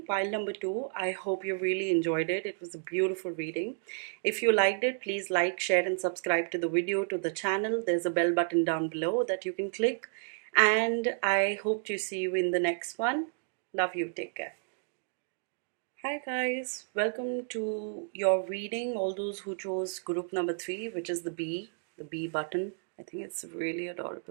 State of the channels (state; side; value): silent; left; digital silence